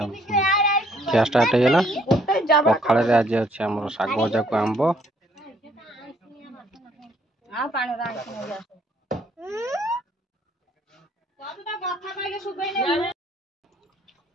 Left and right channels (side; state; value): both; normal; correlation 0.65